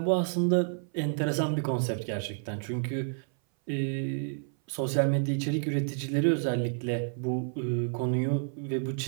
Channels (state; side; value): silent; left; 57 dB below the other